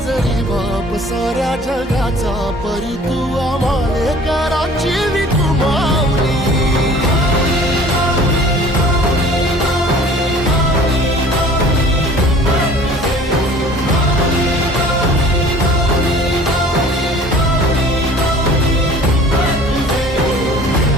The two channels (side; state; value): both; normal; correlation 0.48